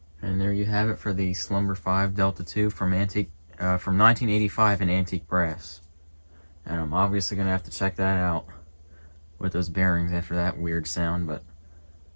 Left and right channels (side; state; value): both; inverted; correlation -1.00